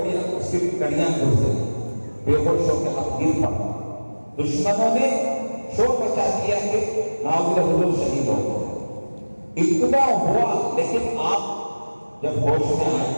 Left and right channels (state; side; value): inverted; both; correlation -1.00